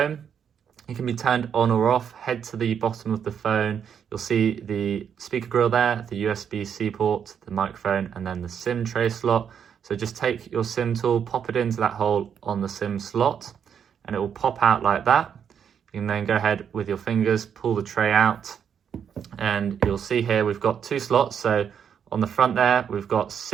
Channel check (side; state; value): left; quieter; 7.9 dB